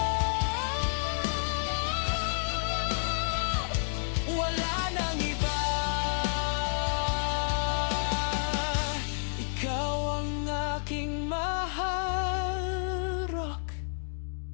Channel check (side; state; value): right; silent; digital silence